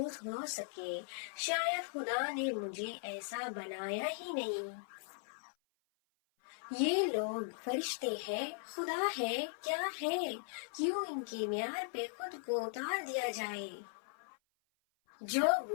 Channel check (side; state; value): right; silent; 52 dB below the other